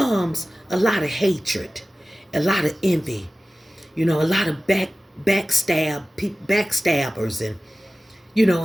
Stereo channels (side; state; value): both; normal; correlation 0.96